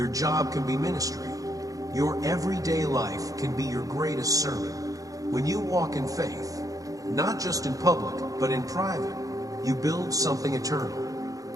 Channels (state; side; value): late; left; 0.17 ms